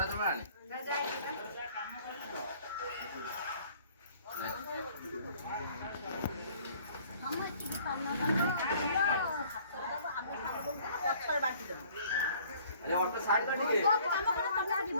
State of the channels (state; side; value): inverted; both; correlation -0.55